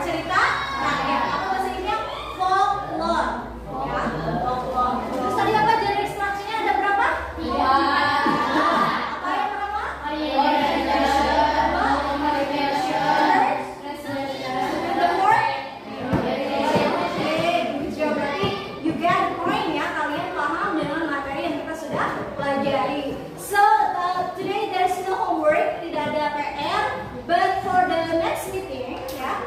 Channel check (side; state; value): both; identical; correlation 1.00